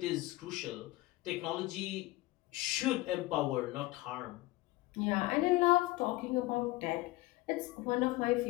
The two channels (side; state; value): right; quieter; 19.3 dB